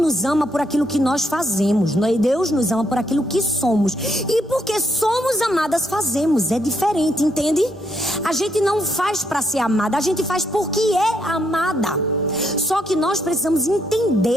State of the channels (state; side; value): normal; both; correlation 0.75